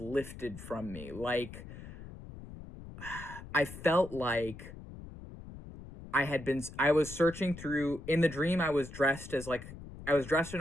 lifted from me. Like, I felt like I was searching through, in the dream, I was dressed in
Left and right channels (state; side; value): noise; left; rumble, 14 dB below the sound